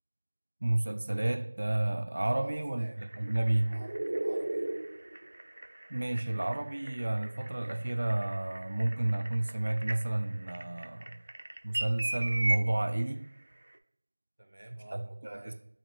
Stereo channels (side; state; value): both; inverted; correlation -1.00